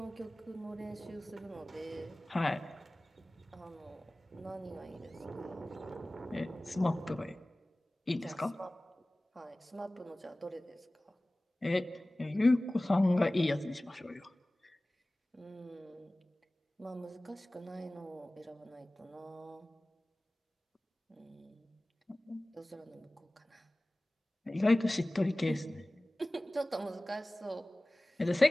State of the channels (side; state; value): both; normal; correlation 0.98